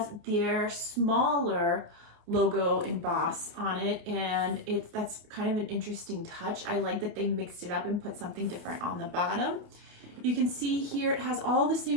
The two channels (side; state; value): left; late; 29 ms